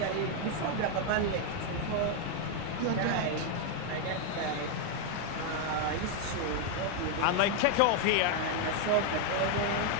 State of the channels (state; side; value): different; both; correlation 0.01